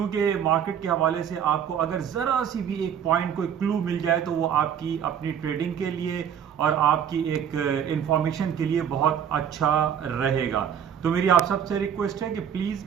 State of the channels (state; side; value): quieter; left; 8.6 dB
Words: मार्केट के हवाले से आपको अगर जरा सी भी एक पॉइंट कोई क्लू मिल जाए तो वो आपकी अपनी ट्रेडिंग के लिए और आपकी एक इंफॉर्मेशन के लिए बहुत अच्छा रहेगा। तो मेरी आप सबसे रिक्वेस्ट है कि